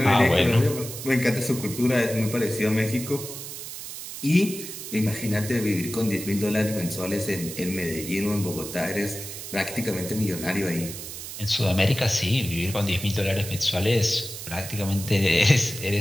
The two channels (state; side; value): noise; right; hiss, 9 dB below the sound